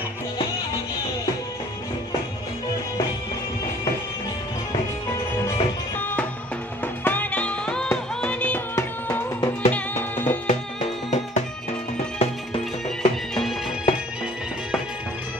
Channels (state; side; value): normal; both; correlation 0.54